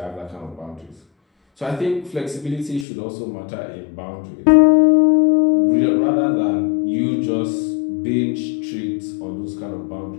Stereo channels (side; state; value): right; drops out; at 2.9 s